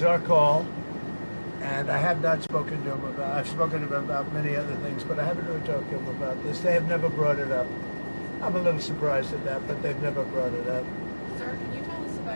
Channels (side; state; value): both; inverted; correlation -1.00